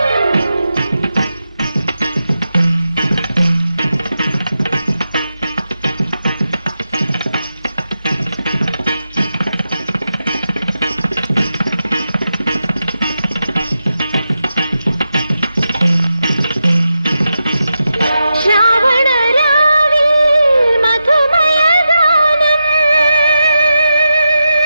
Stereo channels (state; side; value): inverted; both; correlation -0.89